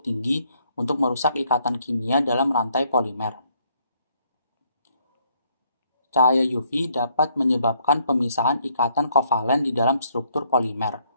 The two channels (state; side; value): inverted; both; correlation -0.69